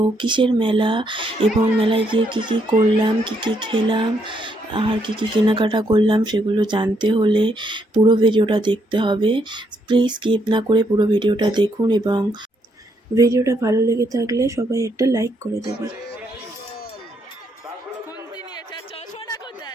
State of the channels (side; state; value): both; normal; correlation 0.75